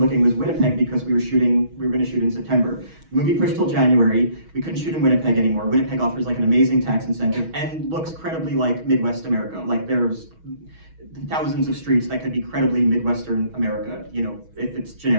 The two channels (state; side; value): late; left; 6.2 ms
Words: was Winnipeg, because we were going to shoot in September. The movie pushed till January. We couldn't shoot in Winnipeg anymore. Winnipeg offers an amazing tax incentive and looks credibly like Midwest America. There's thousands of streets that could be credibly Midwestern America, if it's